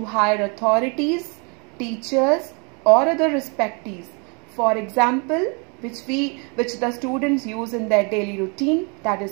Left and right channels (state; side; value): quieter; left; 33.8 dB